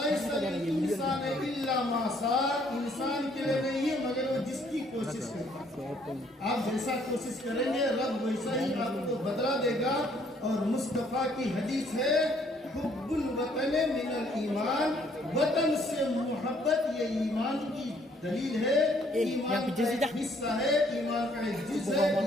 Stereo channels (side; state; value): both; normal; correlation 0.65